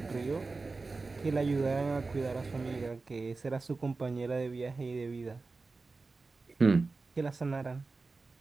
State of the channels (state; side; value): quieter; left; 3.8 dB